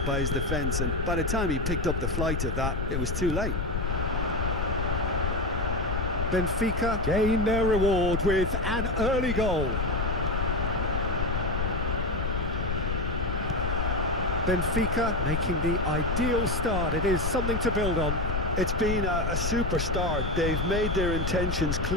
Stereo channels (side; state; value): left; noise; rumble, 1 dB below the sound